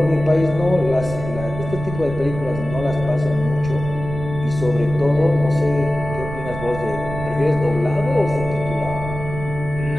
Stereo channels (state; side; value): noise; right; rumble, 9 dB below the sound